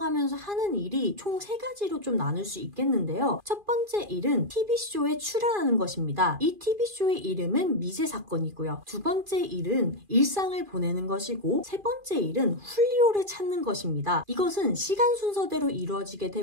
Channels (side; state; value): left; late; 2.4 ms